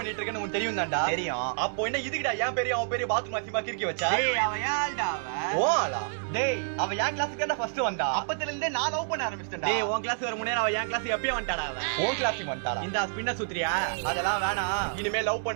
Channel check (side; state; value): left; silent; digital silence